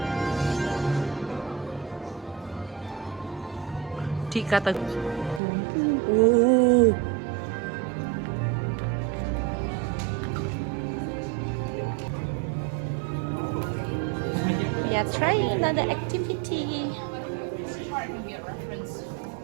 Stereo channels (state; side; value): drops out; left; at 5.4 s